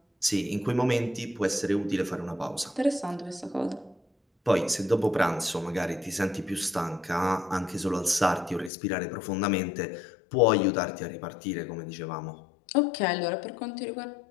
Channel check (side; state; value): right; drops out; at 8.7 s